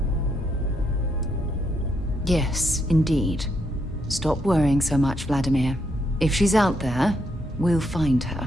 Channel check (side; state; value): both; normal; correlation 0.77